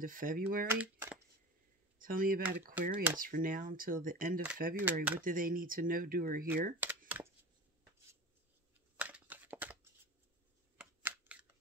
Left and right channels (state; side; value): normal; both; correlation 0.32